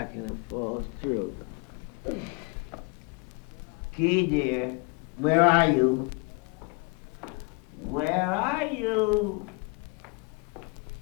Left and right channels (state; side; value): quieter; right; 30.4 dB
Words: and it falls through. Key, dear, where are you? Where are you?